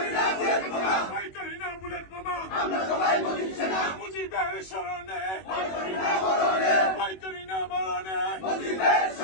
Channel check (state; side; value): late; right; 21 ms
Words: করি না বুলেট বোমা। মুজিবের শরণে ভয় করি না মরণে।